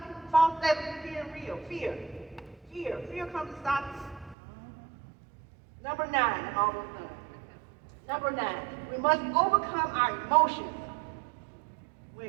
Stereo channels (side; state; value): left; drops out; at 4.4 s